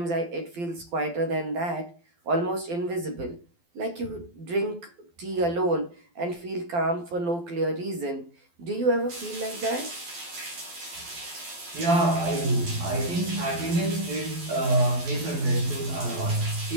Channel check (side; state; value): left; late; 12 ms